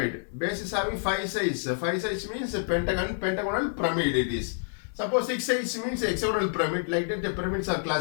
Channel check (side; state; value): right; silent; digital silence